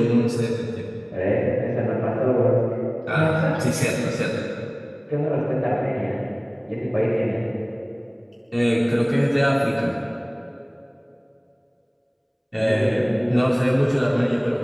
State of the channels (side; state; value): both; identical; correlation 1.00